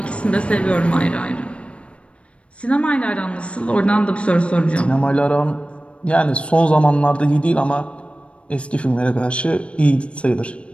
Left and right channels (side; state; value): right; late; 0.060 ms